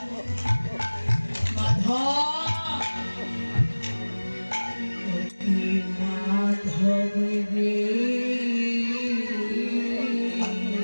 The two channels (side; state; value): both; inverted; correlation -1.00